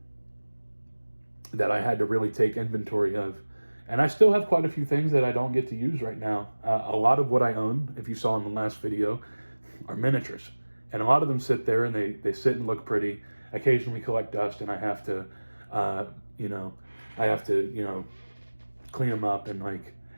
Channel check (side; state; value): both; inverted; correlation -1.00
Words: I had to really take inventory of. And I still have quite a few things that I don't get to use right now. A lot of what I own, if you saw in the last video, are miniatures. And a lot of them sit there and they sit and look pretty, occasionally collect dust, and I have to, clean them up, and like,